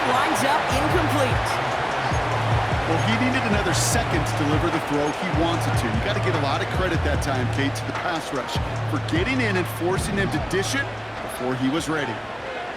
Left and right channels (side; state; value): both; identical; correlation 1.00